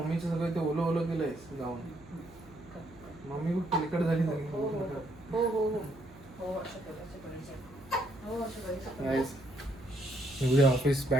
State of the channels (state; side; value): noise; right; hum, 22 dB below the sound